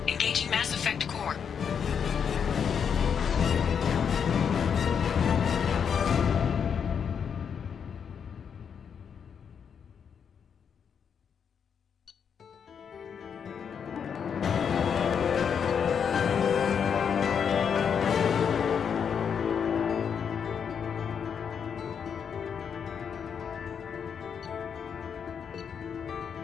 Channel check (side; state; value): right; quieter; 7.2 dB